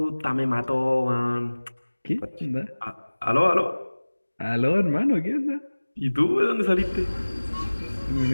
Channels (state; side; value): inverted; both; correlation -1.00